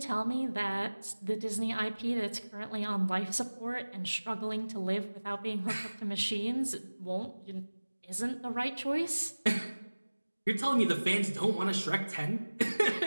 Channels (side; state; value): both; inverted; correlation -1.00